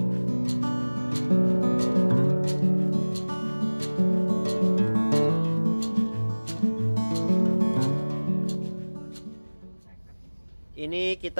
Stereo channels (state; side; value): inverted; both; correlation -1.00